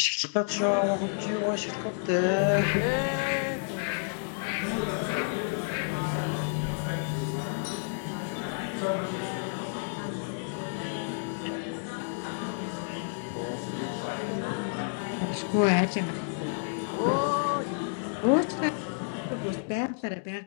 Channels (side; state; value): right; silent; digital silence